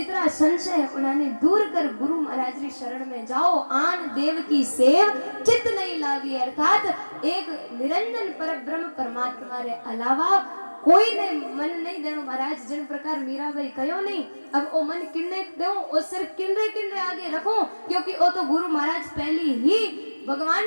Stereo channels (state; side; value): inverted; both; correlation -1.00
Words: संशय है, उन्होंने दूर कर गुरु महाराज की शरण में जाओ। आन देव की सेव चित्त नहीं लावी, अर्थात एक निरंजन पर ब्रह्म परमात्मा रे अलावा कोई ने मन नहीं देनो। महाराज जिन प्रकार मीराबाई कहो नहीं, अब ओ मन किन्ने दो, ओ सिर किन्ने किन्ने आगे रखो, क्योंकि ओ तो गुरु महाराज पहली ही भगवान